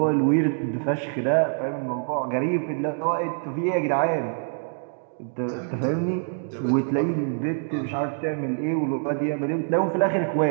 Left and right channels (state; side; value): silent; left; 62 dB below the other